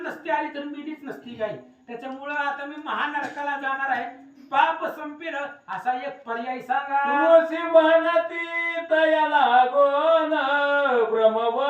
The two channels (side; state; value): both; identical; correlation 1.00